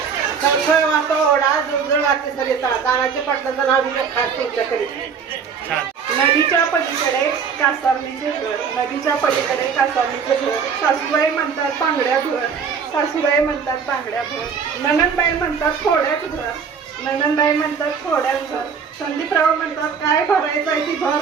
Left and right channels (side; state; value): left; quieter; 6.4 dB